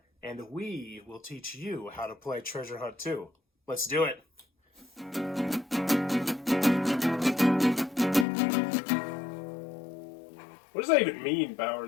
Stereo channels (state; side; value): drops out; right; at 8.2 s